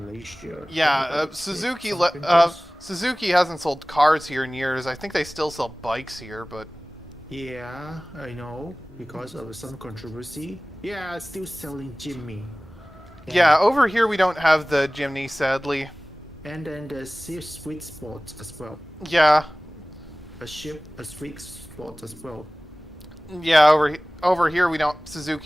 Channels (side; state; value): both; normal; correlation 0.98